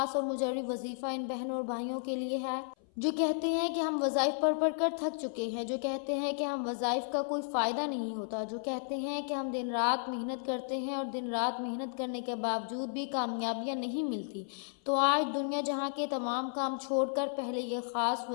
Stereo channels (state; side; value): silent; right; 56 dB below the other